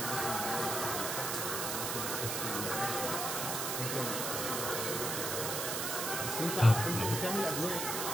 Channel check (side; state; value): right; noise; hiss, 1 dB below the sound